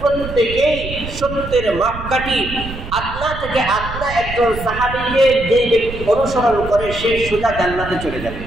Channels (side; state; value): right; noise; rumble, 10 dB below the sound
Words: প্রত্যেকেই সত্যের মাপকাঠি। আদনা থেকে আদনা একজন সাহাবীকে যে ব্যক্তি অনুসরণ করে সে সোজা জান্নাতে চলে যাবে।